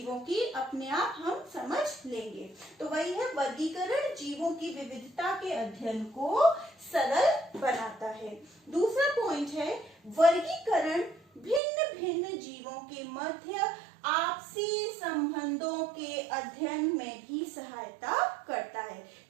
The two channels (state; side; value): drops out; left; at 11.6 s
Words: की अपने आप हम समझ लेंगे। तो वही है वर्गीकरण, जीवों की विविधता के अध्ययन को सरल बनाता है। दूसरा पॉइंट है वर्गीकरण भिन्न भिन्न जीवों के मध्य आपसी संबंधों के अध्ययन में भी सहायता करता है,